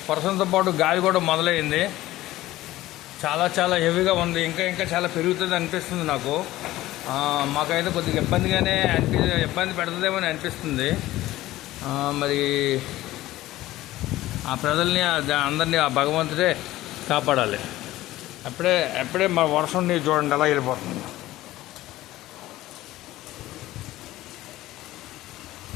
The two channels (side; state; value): right; quieter; 16.2 dB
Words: వర్షంతో పాటు గాలి కూడా మొదలైంది. చాలా చాలా హెవీగా ఉంది. ఇంకా చాలా పెరుగుతుంది అనిపిస్తుంది నాకు. మాకైతే కొద్దిగా ఇబ్బంది పెడుతుందేమో అని అనిపిస్తుంది. మరి ఆ ప్రజల్ని అందరినీ ఆ భగవంతుడే కాపాడాలి. ఎప్పుడే మా వర్షం నీరు చూడండి ఎలా వెళ్ళిపోతుంది.